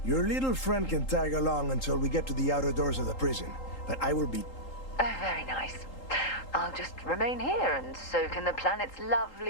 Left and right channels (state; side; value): late; right; 3.8 ms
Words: Your little friend can tag along until we get to the outer doors of the prison, but I will be... Very nice. I'll just remain here and soak in the planet's